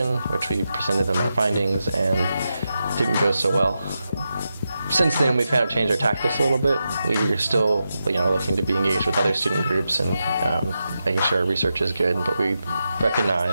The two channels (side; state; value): both; inverted; correlation -0.88